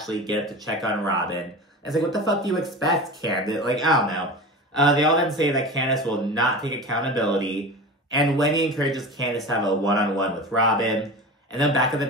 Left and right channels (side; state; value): both; normal; correlation 0.31